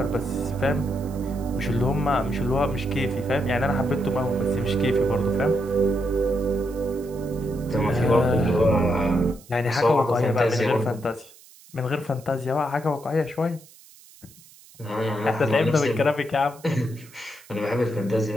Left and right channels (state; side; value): noise; right; hiss, 24 dB below the sound